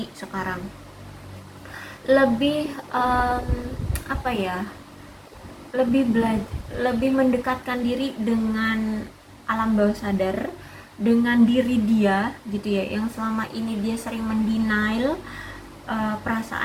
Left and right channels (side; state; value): both; identical; correlation 1.00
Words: sekarang, lebih apa ya, lebih mendekatkan diri dengan alam bawah sadar, dengan diri dia gitu ya, yang selama ini dia sering mendenial